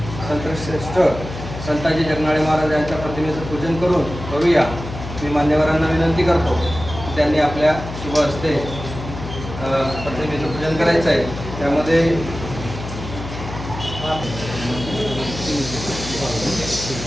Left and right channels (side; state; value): left; noise; hum, 9 dB below the sound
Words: संतश्रेष्ठ संताजी जगनाडे महाराज यांच्या प्रतिमेचं पूजन करून करूया। मी मान्यवरांना विनंती करतो की त्यांनी आपल्या शुभ हस्ते प्रतिमेचं पूजन करायचं आहे। त्यामध्ये